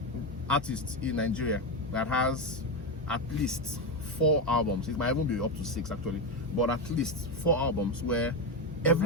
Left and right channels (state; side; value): normal; both; correlation 0.11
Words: artist in Nigeria that has at least 4 albums. It might even be up to 6 actually, but at least 4 albums where